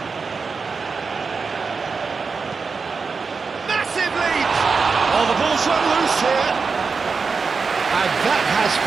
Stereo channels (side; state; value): left; quieter; 4.9 dB